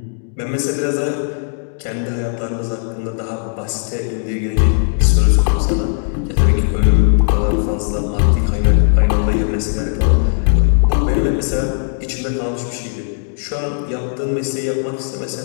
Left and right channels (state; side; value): silent; right; digital silence